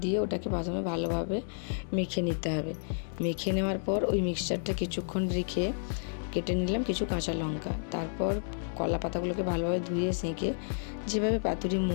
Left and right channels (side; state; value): right; silent; digital silence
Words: দিয়ে ওটাকে প্রথমে ভালোভাবে মেখে নিতে হবে। মেখে নেওয়ার পর ওই মিক্সচারটা কিছুক্ষণ রেখে কেটে নিলাম কিছু কাঁচা লঙ্কা। তারপর কলা পাতাগুলোকে ভালোভাবে ধুয়ে সেঁকে যেভাবে পাতুরি